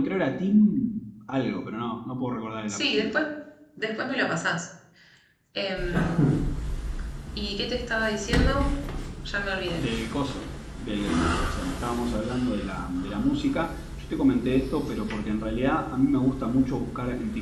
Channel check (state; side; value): identical; both; correlation 1.00